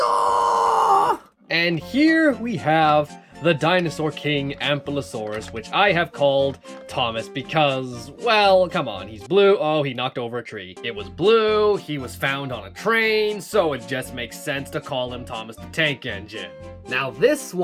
And here we have the Dinosaur King Ampelosaurus, which I have called Thomas because, well, come on, he's blue. Oh, he knocked over a tree. It was blue, he was found on a train, so it just makes sense to call him Thomas the Tank Engine. Now, this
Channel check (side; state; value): both; identical; correlation 1.00